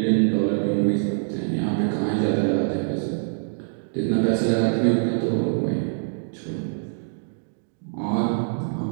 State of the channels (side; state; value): left; silent; digital silence